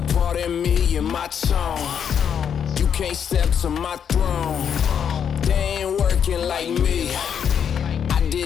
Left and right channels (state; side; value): quieter; right; 8.0 dB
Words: Pardon me and my tone. You can't step to my throne. They ain't working like me. I